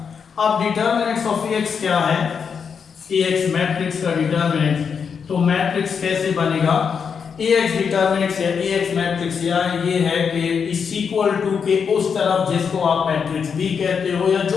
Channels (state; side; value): quieter; right; 6.4 dB